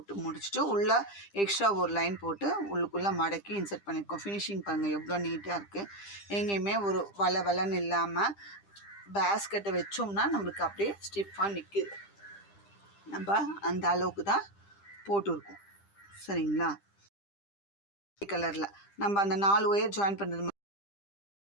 முடிச்சுட்டு உள்ளே எக்ஸ்ட்ரா ஒரு லைன் போட்டு உள்ளுக்குள்ளே மடக்கி இன்சர்ட் பண்ணியிருக்கோம். ஃபினிஷிங் பாருங்கள் எவ்வளோ நீட்டாக இருக்குது. எங்கேயுமே ஒரு வளன்னு இல்லாமல் பேஸ்கெட்டை வச்சோம்னா நம்மளுக்கு அப்படியே ஸ்டிஃபாக நிற்குது. நம்ம அந்த அளவுக்கு தான் போட்டிருக்கோம். சரிங்களா? கலரில் நம்ம அந்த 4 ஒயர் ஜாயின் பண்ணுறது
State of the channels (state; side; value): late; right; 10 ms